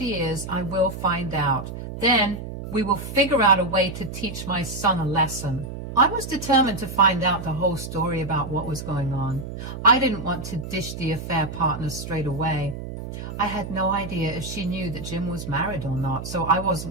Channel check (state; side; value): noise; right; hum, 9 dB below the sound